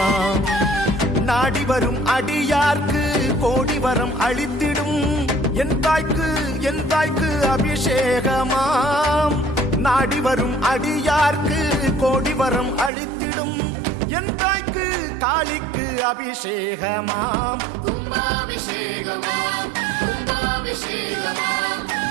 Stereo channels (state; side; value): drops out; left; at 12.9 s